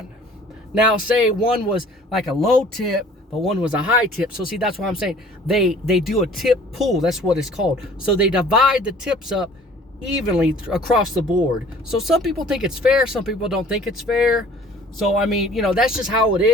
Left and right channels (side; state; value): both; normal; correlation 0.51